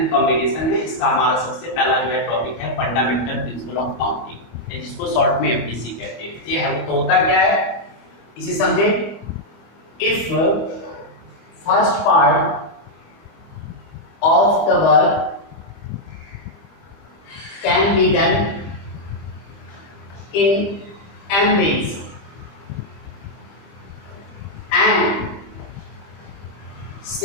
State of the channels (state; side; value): late; right; 25 ms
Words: कॉम्बिनेशन है। इसका हमारा सबसे पहला जो है टॉपिक है फंडामेंटल प्रिंसिपल ऑफ काउंटिंग, जिसको शॉर्ट में एफपीसी कहते हैं। ये है तो होता क्या है इसे समझे। If first part of the work can be done in n ways and